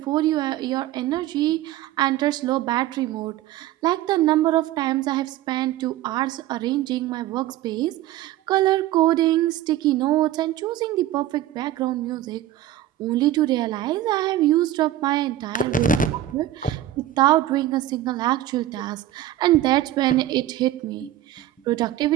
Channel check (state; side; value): quieter; left; 13.3 dB